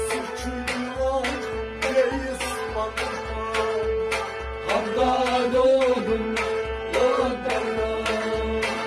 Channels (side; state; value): both; identical; correlation 1.00